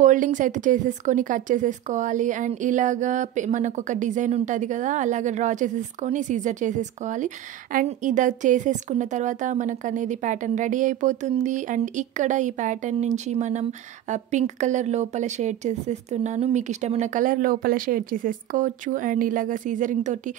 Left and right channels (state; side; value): quieter; left; 12.0 dB